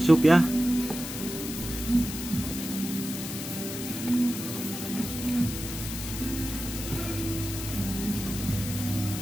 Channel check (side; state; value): left; noise; hiss, 7 dB below the sound